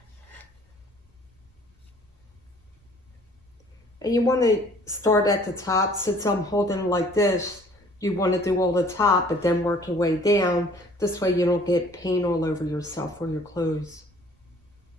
And you want to start at the top. Since I'm holding it like this, you want to do all the top, but then work your way down. This way you don't get paint all over yourself or your clothes.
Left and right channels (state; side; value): normal; both; correlation 0.55